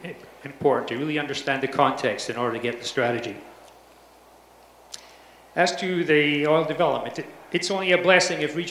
important, to really understand the context in order to get the strategy. As to the oil development, it's only a blessing if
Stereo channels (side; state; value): both; identical; correlation 1.00